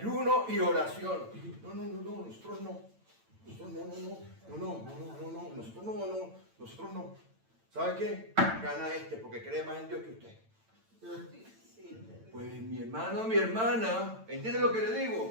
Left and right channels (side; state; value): left; late; 8.9 ms